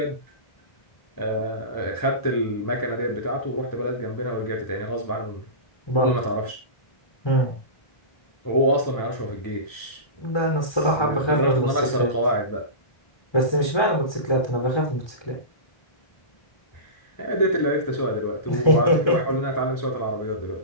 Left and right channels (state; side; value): late; right; 1.3 ms